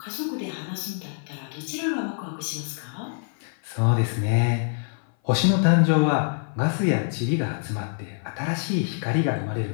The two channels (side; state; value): right; silent; 57 dB below the other